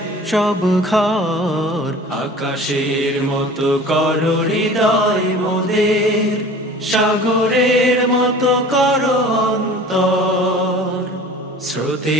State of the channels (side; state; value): both; normal; correlation 0.43